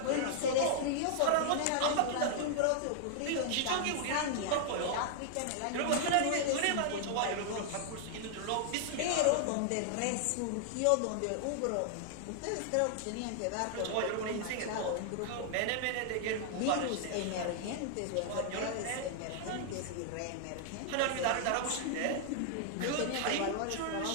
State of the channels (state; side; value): different; both; correlation -0.01